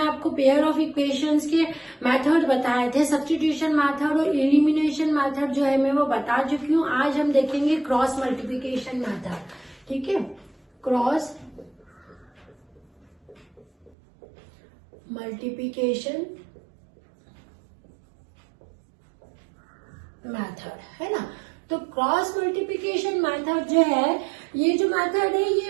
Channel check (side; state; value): left; drops out; at 13.9 s